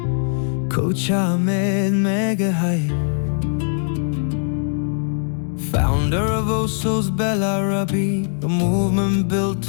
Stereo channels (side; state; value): right; silent; digital silence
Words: Coach Ahmed Megahype, founder of Oso's Belarabi, a movement built